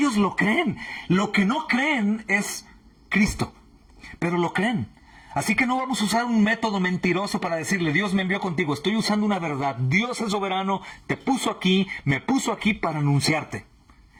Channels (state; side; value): identical; both; correlation 1.00